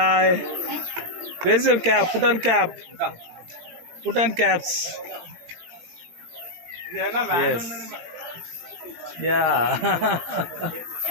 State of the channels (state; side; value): late; left; 18 ms